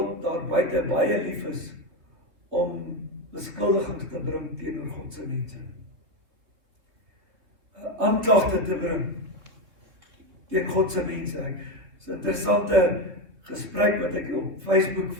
daar buite baie lief is om beskuldigings te bring teenoor God se mense. Aanklagte te bring teen God se mense. Dis 'n interessante gesprek wat ek op Facebook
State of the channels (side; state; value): left; late; 3.2 ms